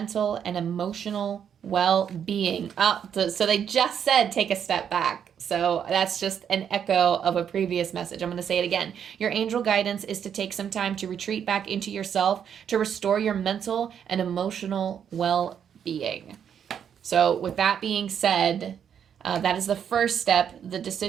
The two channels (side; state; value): left; quieter; 8.3 dB